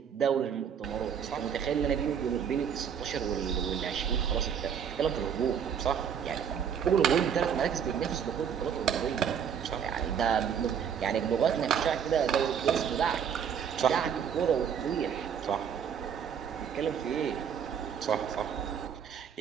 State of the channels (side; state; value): left; quieter; 7.9 dB